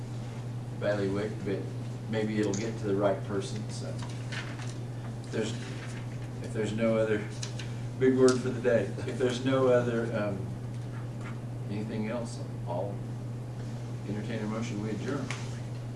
bailiwick, but maybe it'll get to the right person, so. If there's no other, big word for the day, if there's no other, anything else, I'll entertain a motion, we adjourn.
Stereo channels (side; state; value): both; identical; correlation 1.00